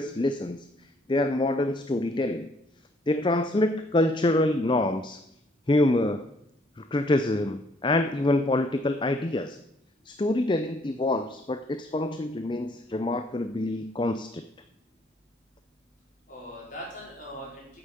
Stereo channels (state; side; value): normal; both; correlation 0.65